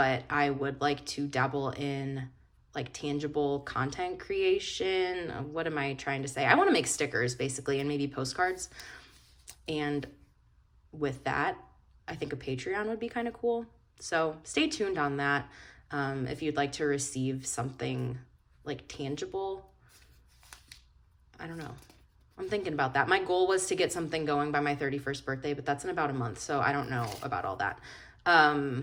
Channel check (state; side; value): identical; both; correlation 1.00